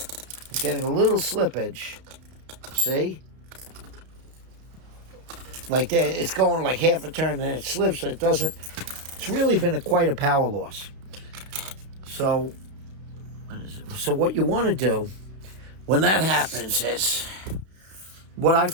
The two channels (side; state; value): left; late; 32 ms